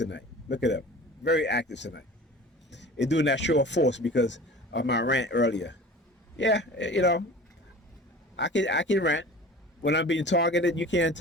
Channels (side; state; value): both; normal; correlation 0.41